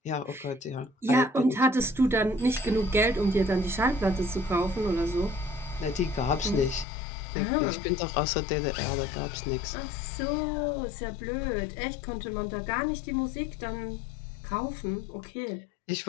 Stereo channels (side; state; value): right; drops out; at 6.9 s